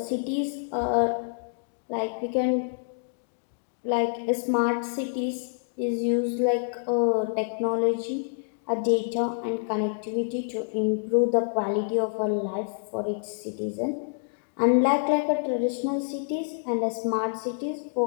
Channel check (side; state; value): right; silent; digital silence